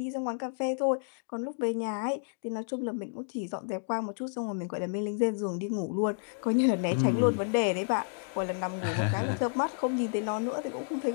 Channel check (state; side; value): silent; right; digital silence